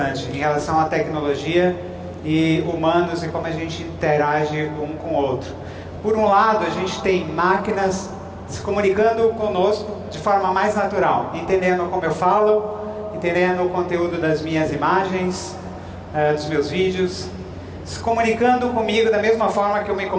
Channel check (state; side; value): identical; both; correlation 1.00